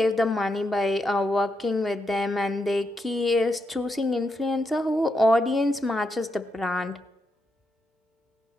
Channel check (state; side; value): normal; both; correlation 0.83